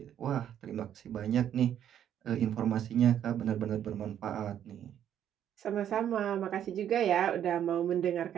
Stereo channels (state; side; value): quieter; left; 10.1 dB